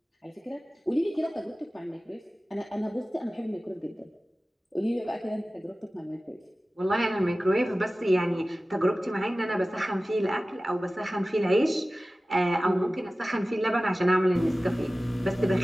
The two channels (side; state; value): both; normal; correlation 0.97